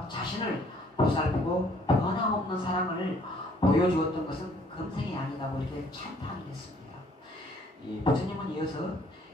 자신을 보살피고 변함없는 사랑을 보여주었던 것은 금생이 아니다고 이렇게 찬탄을 했습니다. 부처님은 이어서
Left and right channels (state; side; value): normal; both; correlation 0.61